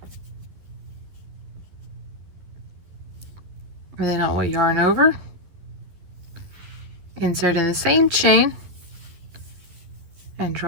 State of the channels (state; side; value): late; left; 12 ms